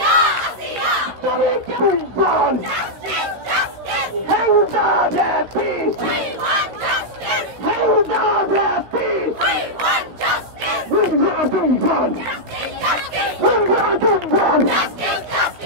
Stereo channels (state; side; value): late; left; 16 ms